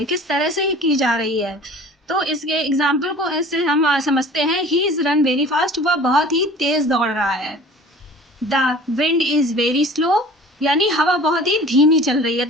किस तरह से की जा रही है। तो इसके एग्जाम्पल को ऐसे हम समझते हैं। He is run very fast, वह बहुत ही तेज दौड़ रहा है। The wind is very slow, यानी हवा बहुत ही धीमी चल रही है।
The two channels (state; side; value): normal; both; correlation 0.44